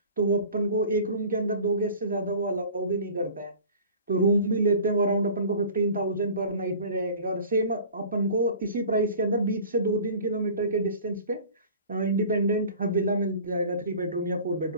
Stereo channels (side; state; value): both; inverted; correlation -0.43